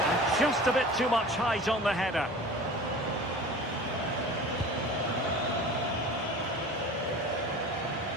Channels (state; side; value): normal; both; correlation 0.39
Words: just a bit too much height on the header.